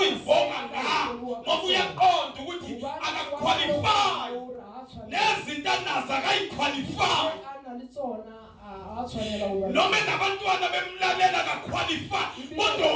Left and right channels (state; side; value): identical; both; correlation 1.00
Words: ngayo ngoba uyaqonda ukuthi akaqualify nezinto anazo akayiqualify noma nabantwana bemlalela akaqualify kodwa